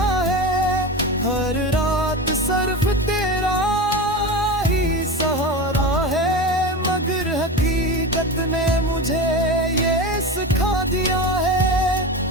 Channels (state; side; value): normal; both; correlation 0.25